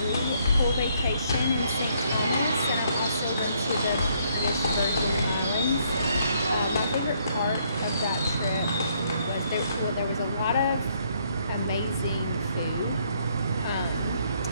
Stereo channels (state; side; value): inverted; both; correlation -0.69